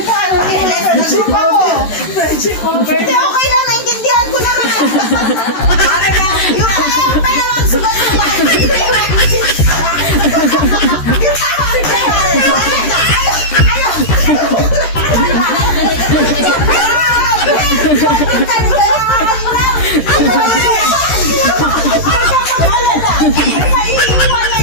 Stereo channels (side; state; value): right; late; 13 ms